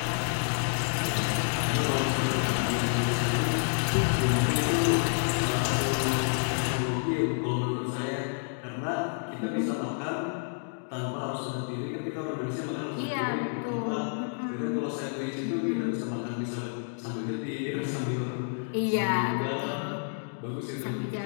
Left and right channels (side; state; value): right; silent; digital silence